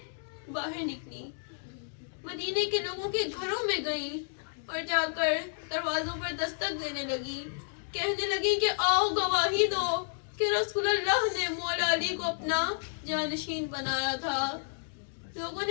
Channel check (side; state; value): right; silent; digital silence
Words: باہر نکلی، مدینے کے لوگوں کے گھروں میں گئیں اور جا کر دروازوں پر دستک دینے لگی، کہنے لگی کہ آؤ گواہی دو کہ رسول اللہ نے مولا علی کو اپنا جانشین بنایا تھا۔ لوگوں